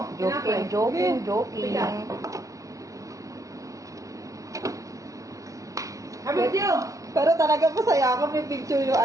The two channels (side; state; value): left; late; 0.16 ms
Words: Joking. Pero talaga masaya ako, may picture yung